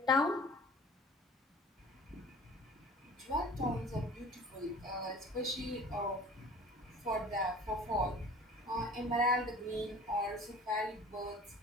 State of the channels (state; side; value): normal; both; correlation 0.44